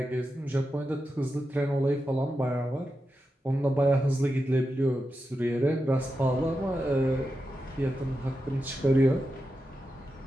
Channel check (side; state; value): both; normal; correlation 0.89